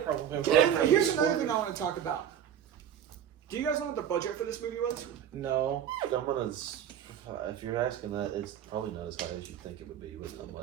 probably. Here's another thing I want to talk about. Do you guys know what the budget for this movie was? No. If you're asking that, it's probably not as high as you think it would be with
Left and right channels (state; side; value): quieter; left; 9.4 dB